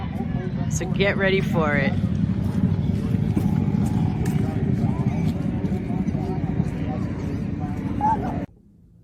so get ready for it.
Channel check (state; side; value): identical; both; correlation 1.00